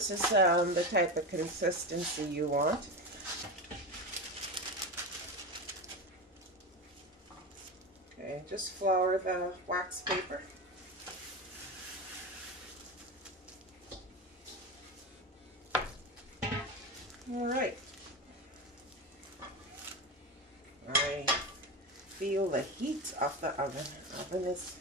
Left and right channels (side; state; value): both; normal; correlation 0.21